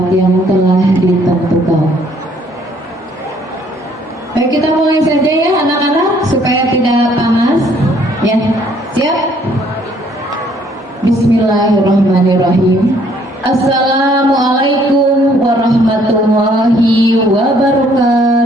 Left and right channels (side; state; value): both; normal; correlation 0.63